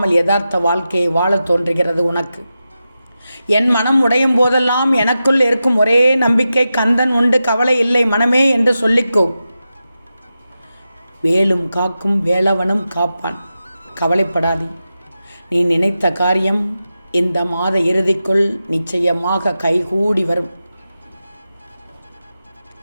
யதார்த்த வாழ்க்கையை வாழ தோன்றுகிறது உனக்கு. என் மனம் உடையும் போதெல்லாம் எனக்குள் இருக்கும் ஒரே நம்பிக்கை, கந்தன் உண்டு, கவலை இல்லை மனமே என்று சொல்லிக்கோ. வேலும் காக்கும் வேலவனும் காப்பான், கவலைப்படாதே. நீ நினைத்த காரியம் இந்த மாத இறுதிக்குள் நிச்சயமாக கைகூடி வரும்.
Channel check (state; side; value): inverted; both; correlation -0.91